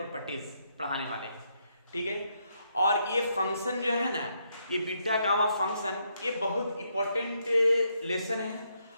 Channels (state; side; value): inverted; both; correlation -0.77